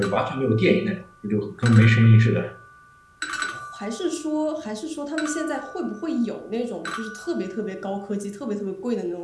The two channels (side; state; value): both; identical; correlation 1.00